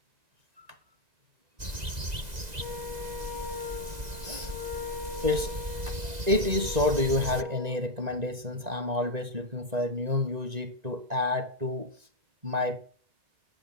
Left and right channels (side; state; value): left; late; 2.0 ms